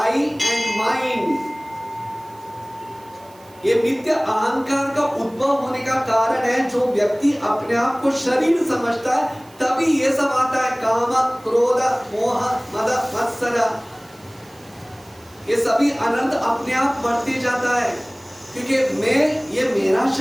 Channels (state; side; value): noise; right; hiss, 27 dB below the sound